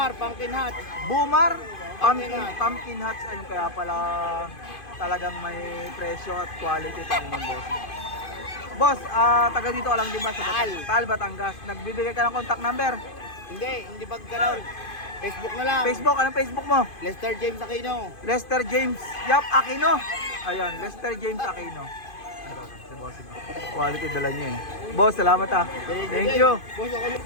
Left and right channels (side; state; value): right; late; 2.5 ms